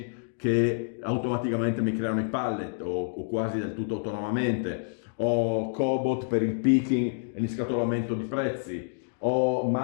che automaticamente mi creano i pallet o quasi del tutto autonomamente, o cobot per il picking e l'inscatolamento di prezzi, o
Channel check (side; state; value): right; silent; digital silence